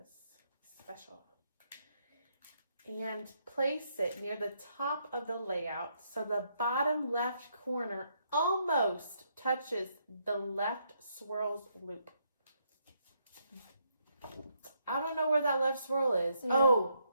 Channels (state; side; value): inverted; both; correlation -0.75